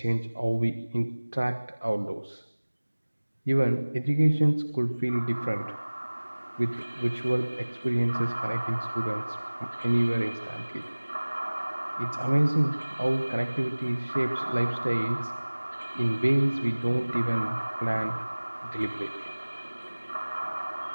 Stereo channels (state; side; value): inverted; both; correlation -1.00